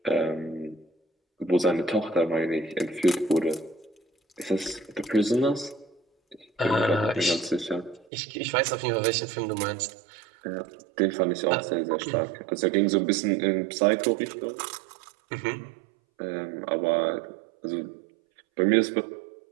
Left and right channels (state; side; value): drops out; left; at 8.1 s